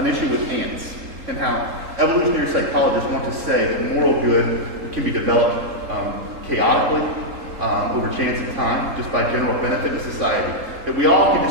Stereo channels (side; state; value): left; late; 3.8 ms